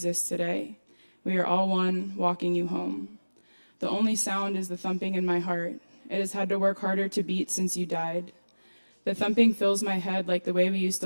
today. We are all one, walking you home. The only sound is the thumping in my heart. It has had to work harder to beat since you died. The thumping fills my head like the way we used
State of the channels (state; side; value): inverted; both; correlation -1.00